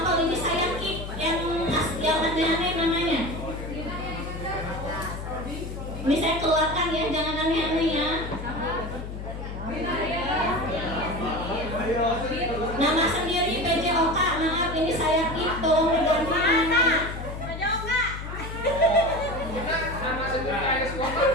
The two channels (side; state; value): left; noise; hum, 8 dB below the sound